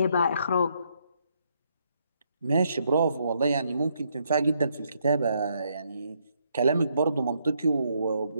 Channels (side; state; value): both; inverted; correlation -0.74